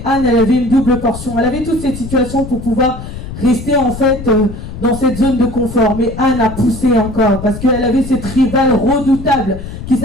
Anne, elle avait une double portion. Elle avait toute cette situation pour pouvoir rester en fait dans cette zone de confort. Mais Anne a poussé encore, parce qu'elle avait cette rivale redoutable qui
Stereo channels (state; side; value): noise; left; rumble, 10 dB below the sound